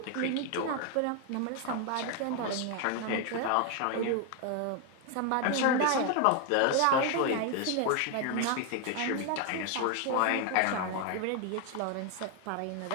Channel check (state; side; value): different; both; correlation 0.01